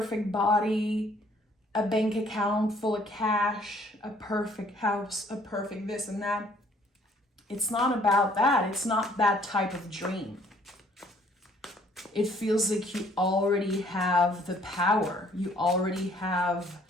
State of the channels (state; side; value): normal; both; correlation 0.61